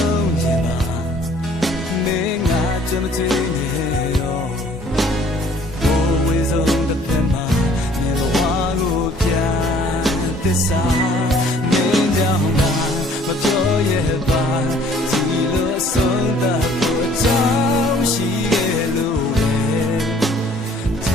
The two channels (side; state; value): both; normal; correlation 0.57